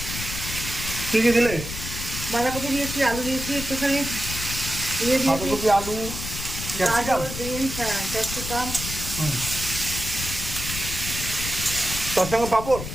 কি কি দিলে? বাঁধাকপি দিয়েছি, আলু দিয়েছি, একটুখানি দিয়ে দিয়েছি বাঁধাকপি, আলু, ক্যাপসিকাম। গাজর, বিনস, হ্যাঁ ক্যাপসিকাম। তার সঙ্গে পাঁপড়।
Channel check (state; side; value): noise; left; rumble, 7 dB below the sound